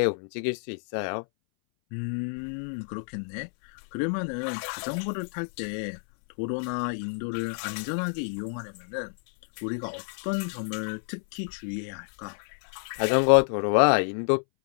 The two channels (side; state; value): right; silent; 59 dB below the other